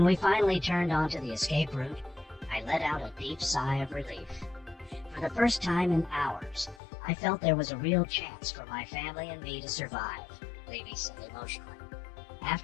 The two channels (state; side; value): drops out; right; at 6.8 s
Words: we finally turned onto the escape route, I let out a deep sigh of relief. For the first time in hours, I felt there was a real chance for my family and me to survive, Levy said emotionally.